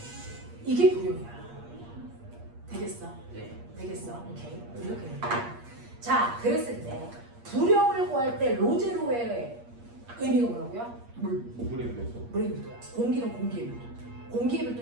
이게 부력이야. 되겠어? 네. 되겠어? 오케이. 이렇게 된다. 자, 그랬을 때 부력을 구할 때 로제로의 의미가 뭐라고요? 물에 비해서. 물의 밀도야. 공기는 공기의 밀도. 공기의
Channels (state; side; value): late; left; 8.5 ms